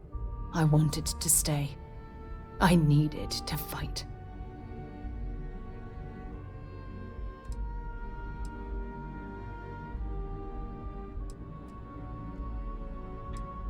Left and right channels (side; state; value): both; identical; correlation 1.00